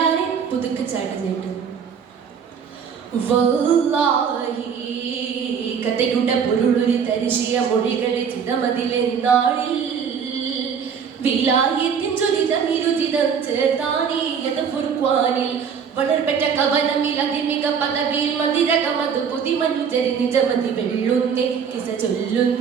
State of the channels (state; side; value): quieter; left; 6.9 dB